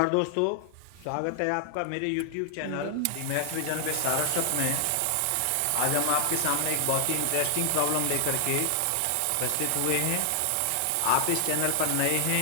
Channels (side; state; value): both; different; correlation 0.00